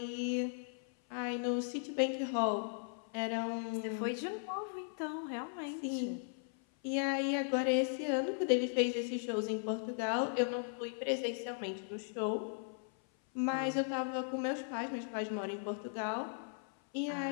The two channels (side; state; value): right; silent; 53 dB below the other